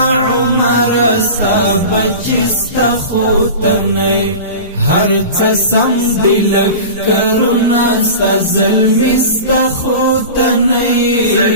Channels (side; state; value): both; inverted; correlation -0.33